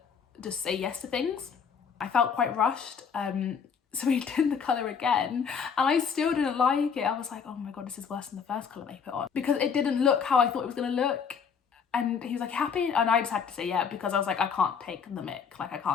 just say yes to things. I felt quite rushed. So we did the colour again and I still didn't like it. I was like, oh my God, this is worse than the first colour they put on because it didn't look how I thought it was going to look. And he was like, happy? And I just had to say yeah because I was like, I can't take the mick. Like I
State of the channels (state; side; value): quieter; right; 6.5 dB